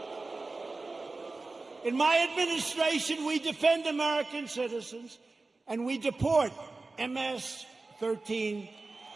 In my administration, we defend American citizens, and we deport MS-13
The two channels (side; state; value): left; quieter; 3.5 dB